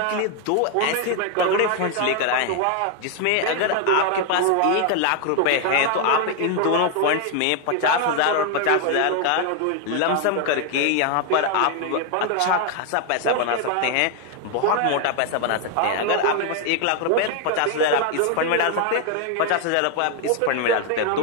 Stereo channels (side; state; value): both; different; correlation 0.01